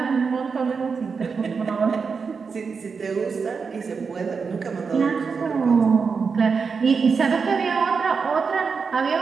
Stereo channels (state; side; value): quieter; left; 5.3 dB